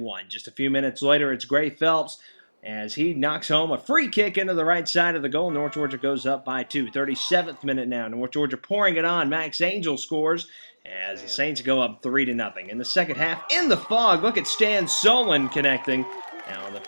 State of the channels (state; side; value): inverted; both; correlation -1.00